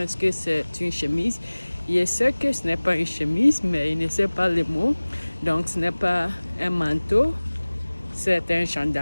que c'est une chemise. Je sais que ce n'est pas une chemise, mais il ne sait pas le mot. Donc, ce n'est pas un manteau, c'est un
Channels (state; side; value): inverted; both; correlation -1.00